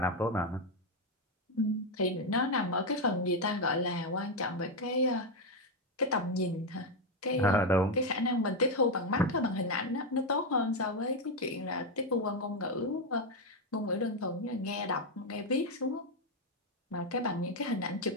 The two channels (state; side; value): normal; both; correlation 0.06